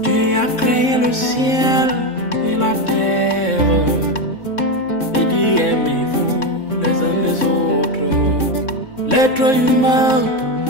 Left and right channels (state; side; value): late; right; 3.6 ms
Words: Créé le ciel et la terre et dit aimez-vous les uns les autres. L'être humain